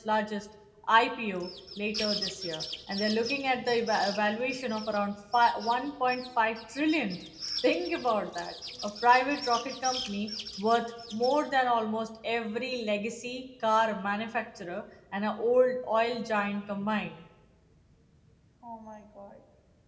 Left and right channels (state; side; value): identical; both; correlation 1.00